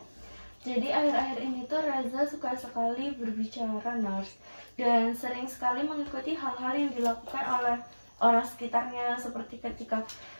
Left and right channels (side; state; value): both; inverted; correlation -1.00